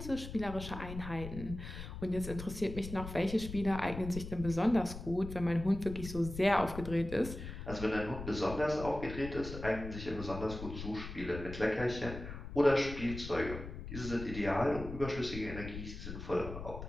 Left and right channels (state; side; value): noise; left; rumble, 9 dB below the sound